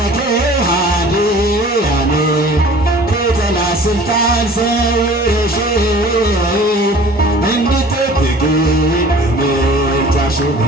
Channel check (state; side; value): normal; both; correlation 0.47